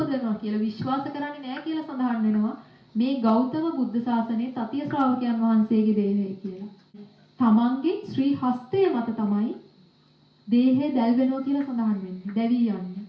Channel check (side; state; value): both; identical; correlation 1.00